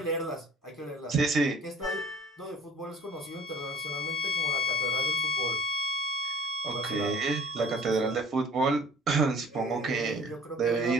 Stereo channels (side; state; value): both; normal; correlation 0.50